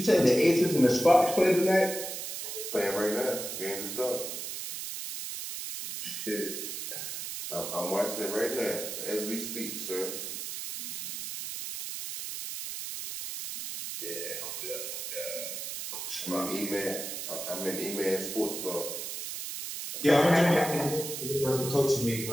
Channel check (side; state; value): right; noise; hiss, 6 dB below the sound